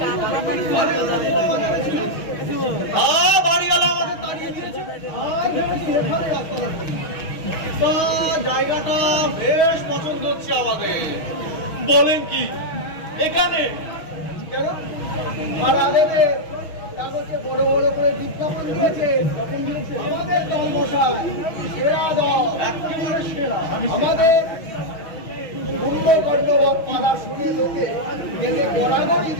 বাড়িওয়ালা আমাদের তাড়িয়ে দিয়েছে। জায়গাটা বেশ পছন্দ হচ্ছে আমাদের। বলেন কি, এখানে কেন ভাড়া দেবে? কাগজে বড় বড় করে বিজ্ঞাপন দিয়েছে। আমাদের দল মশাই সেরা দল, একেবারে সেরা। আমাদের কুম্ভকর্ণবৎ পালা শুনে লোকে দেখে গড়াগড়ি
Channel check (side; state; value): right; late; 6.2 ms